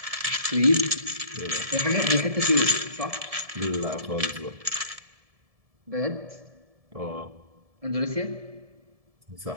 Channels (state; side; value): late; left; 1.7 ms